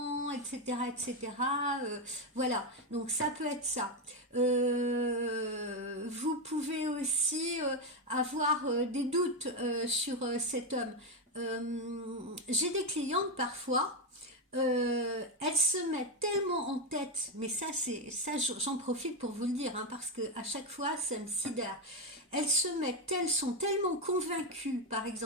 etc., etc. Voilà, donc ça peut être ça. Vous pouvez aussi avoir des doutes sur cet homme. J'ai des clientes parfois, elles se mettent tellement en tête, mais j'en profite pour vous le dire, hein, parce que à chaque fois ça me sidère. Elles sont tellement convaincues, par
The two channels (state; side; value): normal; both; correlation 0.08